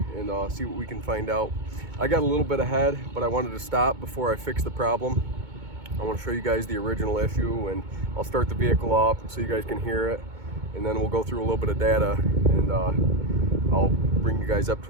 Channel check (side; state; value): left; late; 2.2 ms